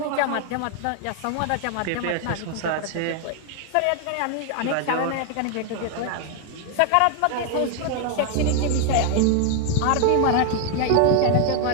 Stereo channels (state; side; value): different; both; correlation 0.00